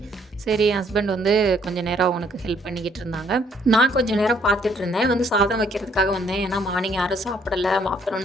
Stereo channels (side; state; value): both; normal; correlation 0.65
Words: சரி என் ஹஸ்பண்ட் வந்து கொஞ்சம் நேரம் அவனுக்கு ஹெல்ப் பண்ணிக்கிட்டு இருந்தாங்க. நான் கொஞ்சம் நேரம் பார்த்துட்டு இருந்தேன். வந்து சாதம் வைக்கிறதுக்காக வந்தேன். ஏன்னா மார்னிங் யாரும் சாப்பிடலை,